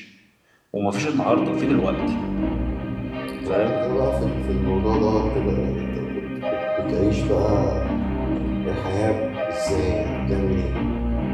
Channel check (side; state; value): both; identical; correlation 1.00